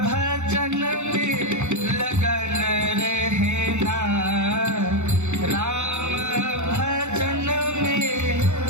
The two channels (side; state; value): left; late; 0.83 ms